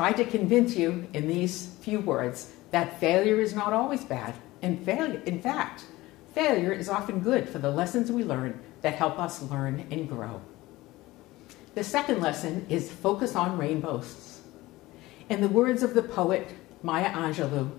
to convince you in these few words that failure is not always bad. In fact, failure is often good for the lessons we learn that help us learn and grow. The second lesson is focus on rainbows. In the words of the poet Maya Angelou,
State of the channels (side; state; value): right; quieter; 18.8 dB